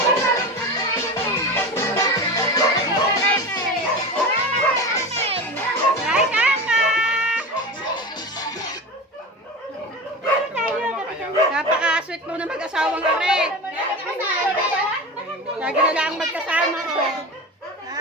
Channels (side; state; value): both; normal; correlation 0.28